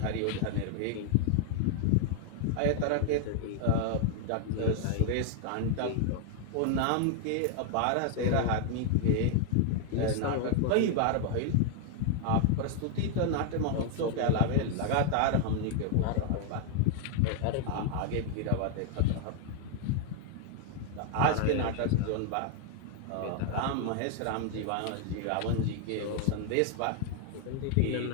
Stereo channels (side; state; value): both; different; correlation 0.00